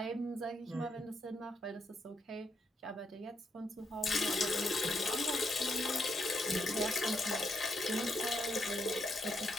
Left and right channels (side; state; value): both; normal; correlation 0.78